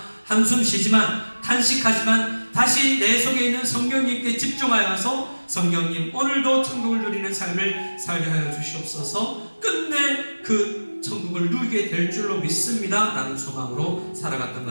한숨 쉬지만 탄식하지만 다시 내 속에 있는 성령님께 집중하여서 성령님 오늘도 천국을 누리는 삶을 살게 하여 주시옵소서. 끝내 그 천국을 누리게 될 줄로 믿습니다 라는 소망으로 살아갔던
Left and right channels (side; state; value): both; inverted; correlation -1.00